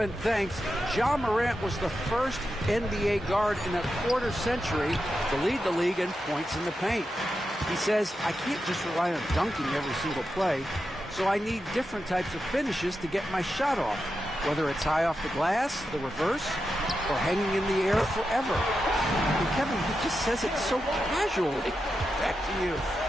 thanks. Ja Morant was the first NBA guard in a quarter century to lead the league in points in the paint. He says, I can't just rely on dunking every single play, so I need different types of finishes to get my shot off, whether it's high off the glass, the reverse, or hanging in the air forever. And Kevin, he just says it so casually. Back to you.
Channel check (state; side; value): normal; both; correlation 0.89